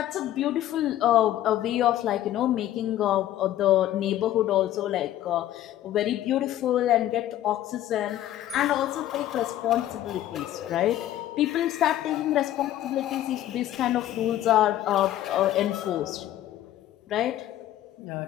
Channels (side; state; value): right; quieter; 13.1 dB